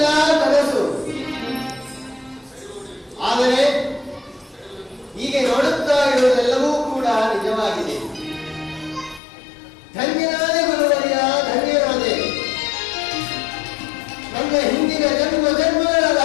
ಕನಸು. ಆದರೆ ಹೀಗೆ ನೋಡುತ್ತಾ ಇರುವುದೆಲ್ಲವೂ ಕೂಡ ನಿಜವಾಗಿದೆ. ಧನ್ಯನಾದೆ ಗುರುವರಿಯ, ಧನ್ಯನಾದೆ. ನನ್ನ ಹಿಂದಿನ ಜನ್ಮಗಳ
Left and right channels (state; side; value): drops out; right; at 9.2 s